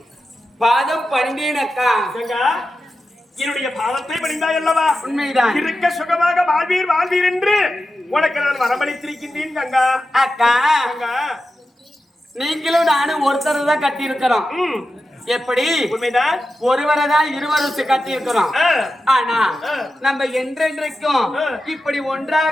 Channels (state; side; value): normal; both; correlation 0.91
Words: பாதம் பணிந்தேன் அக்கா. என்னுடைய பாதத்தை பணிந்தாய் அல்லவா? உண்மைதான். இருக்க சுகமாக வாழ்வீர் வாழ்வீர் என்று உனக்கு நான் வரமளித்திருக்கின்றேன் கங்கா. அக்கா, கங்கா நீங்களும் நானும் ஒருத்தர் தான் கட்டி இருக்கிறோம். எப்படி? உண்மைதான். ஒருவரை தான் இருவரும் கட்டி இருக்கிறோம். ஆனா நம்ம என்றென்றைக்கும் இப்படி